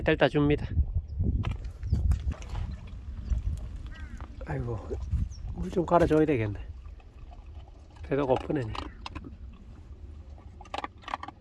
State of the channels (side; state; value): both; identical; correlation 1.00